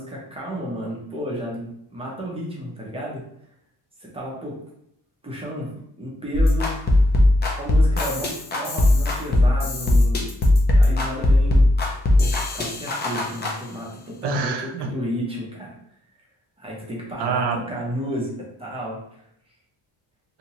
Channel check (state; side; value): normal; both; correlation 0.81